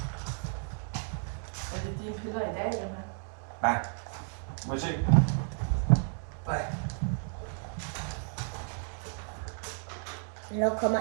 Er det dine piller i dag, dem her? Nej. Må jeg se? Nej. Hvornår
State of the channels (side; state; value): left; silent; 55 dB below the other